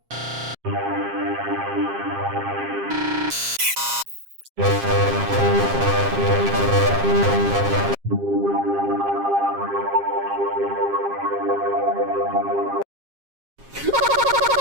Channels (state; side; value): late; left; 7.5 ms